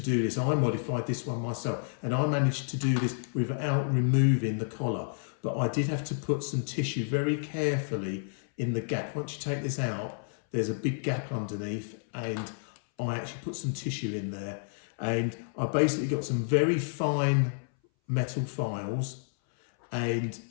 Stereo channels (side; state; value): right; silent; 58 dB below the other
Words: this. I modified this one myself, and I managed to do this without removing the collar. But I did have to put some tissue very carefully in the gap. Once you take this out, there's a big gap underneath, and I actually put some tissue in there. And I basically got some very fine metal files, and